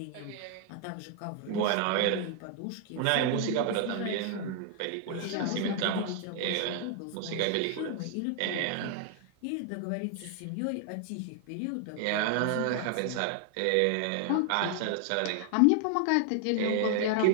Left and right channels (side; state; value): both; different; correlation 0.00